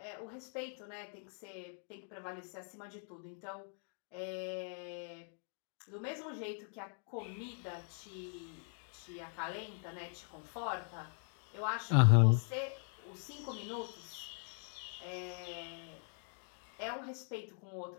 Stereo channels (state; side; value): silent; right; 50 dB below the other